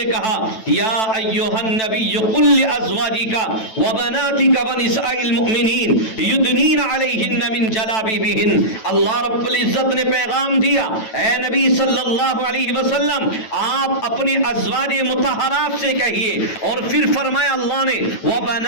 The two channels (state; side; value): late; right; 9.1 ms